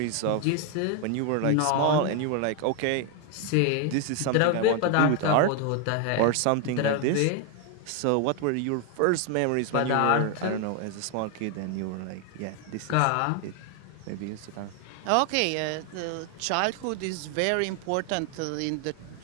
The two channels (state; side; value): different; both; correlation 0.01